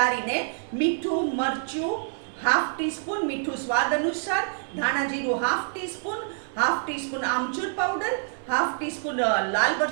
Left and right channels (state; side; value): silent; left; 60 dB below the other